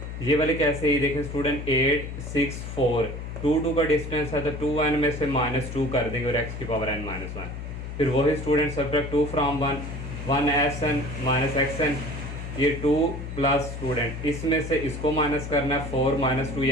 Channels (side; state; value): left; noise; hum, 8 dB below the sound